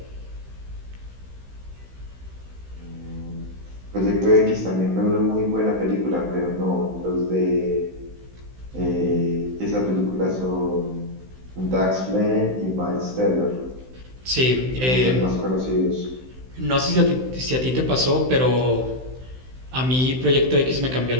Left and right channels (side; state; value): left; late; 16 ms